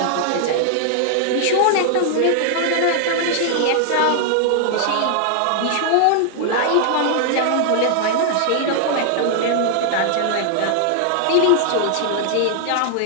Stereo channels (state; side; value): different; both; correlation 0.00